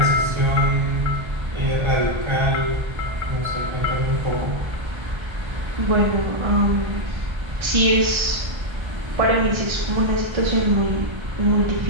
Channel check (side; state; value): left; late; 1.3 ms